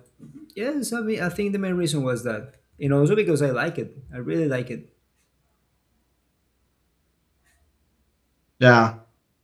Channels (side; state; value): both; identical; correlation 1.00